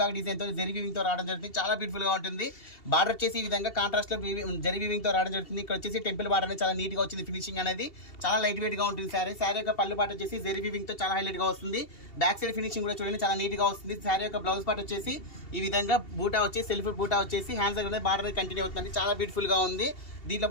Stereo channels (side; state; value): right; late; 2.7 ms